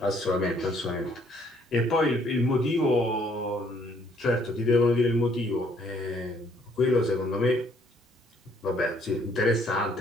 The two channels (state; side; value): normal; both; correlation 0.65